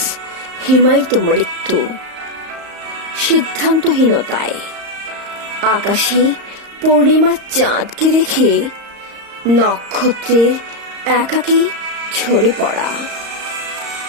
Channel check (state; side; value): late; left; 35 ms